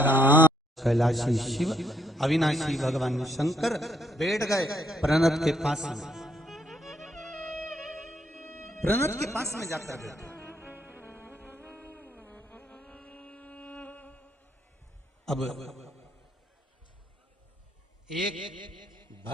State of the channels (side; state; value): both; normal; correlation 0.71